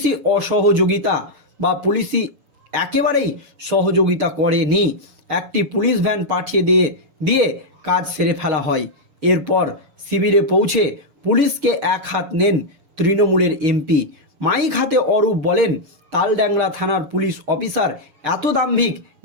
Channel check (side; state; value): left; late; 6.9 ms